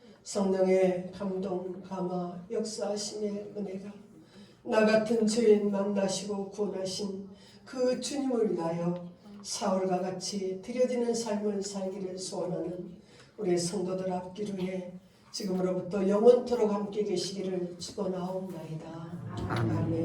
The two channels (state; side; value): identical; both; correlation 1.00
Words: 성령의 감동, 감화, 역사하심의 은혜가 나 같은 죄인 만나시고 구원하신 그 주님을 위하여 사울과 같이 드려지는 삶을 살기를 소원하는 우리 성도들 앞기로에 지금으로부터 영원토록 함께 계시기를 축원하옵나이다.